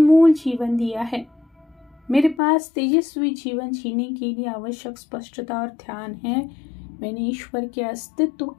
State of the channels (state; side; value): drops out; right; at 2.4 s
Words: जीवन दिया है। मेरे पास तेजस्वी जीवन जीने के लिए आवश्यक स्पष्टता और ध्यान है। मैंने ईश्वर के अस्तित्व